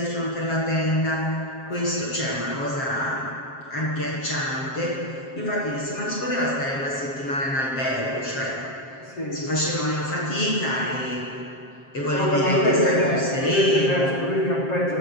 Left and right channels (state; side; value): late; right; 7.5 ms